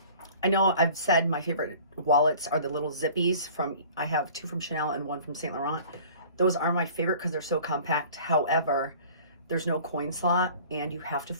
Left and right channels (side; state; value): both; inverted; correlation -0.46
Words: know I've said my favorite wallets are the little zippies I have two from Chanel and one from Saint Laurent. Those are my favorite because they're so compact. However, there's no coin slot and you have to